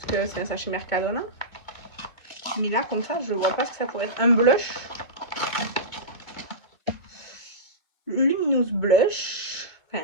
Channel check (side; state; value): right; late; 2.1 ms